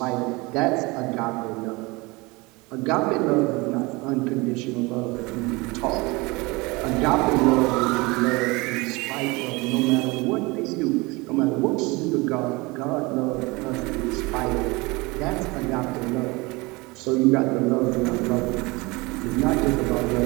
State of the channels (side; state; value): left; quieter; 24.4 dB